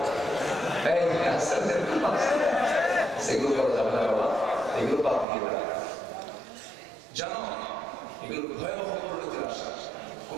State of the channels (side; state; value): left; drops out; at 5.2 s